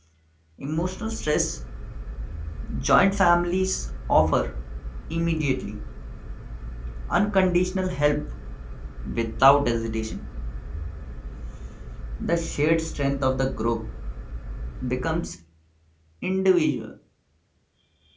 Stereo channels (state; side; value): identical; both; correlation 1.00